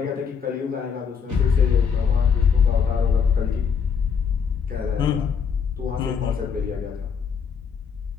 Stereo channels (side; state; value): right; quieter; 6.6 dB